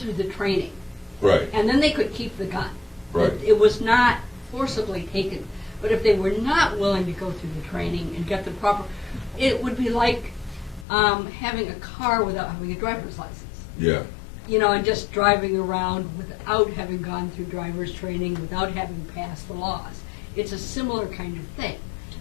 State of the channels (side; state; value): right; drops out; at 10.9 s